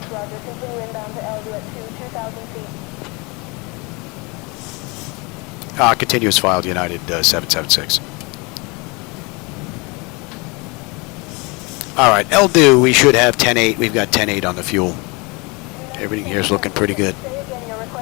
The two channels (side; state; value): right; quieter; 27.6 dB